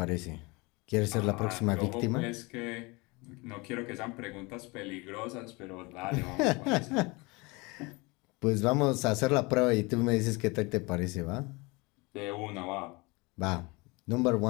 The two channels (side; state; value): right; quieter; 25.9 dB